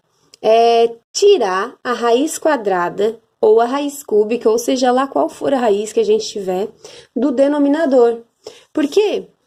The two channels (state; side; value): identical; both; correlation 1.00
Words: É tirar a raiz quadrada ou a raiz cúbica, ou seja lá qual for a raiz que a gente tiver, do denominador. Por quê?